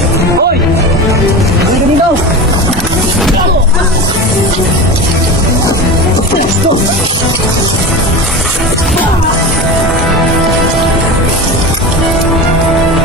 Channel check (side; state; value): both; normal; correlation 0.27